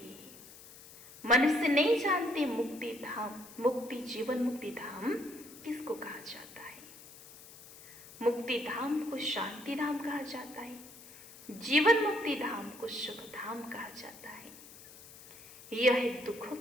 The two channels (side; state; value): left; noise; hiss, 18 dB below the sound